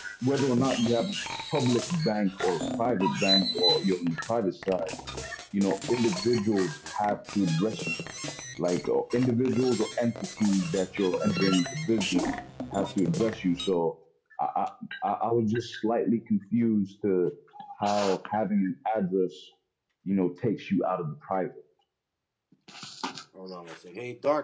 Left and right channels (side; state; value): both; identical; correlation 1.00